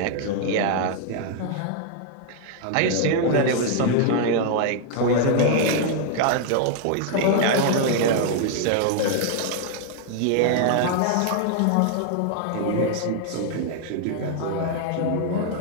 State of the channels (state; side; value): different; both; correlation 0.00